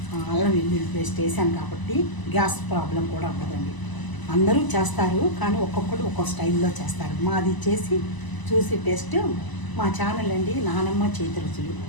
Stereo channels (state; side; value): late; right; 1.0 ms